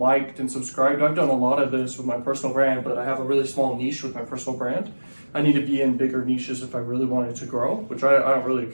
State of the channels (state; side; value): inverted; both; correlation -1.00